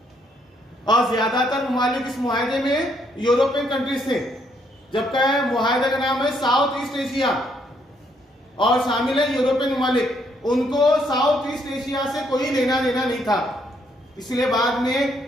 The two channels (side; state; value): both; normal; correlation 0.71